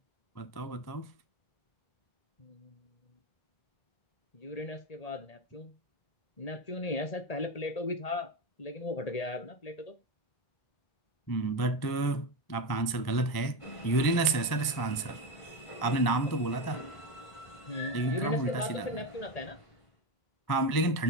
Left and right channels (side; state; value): right; late; 1.1 ms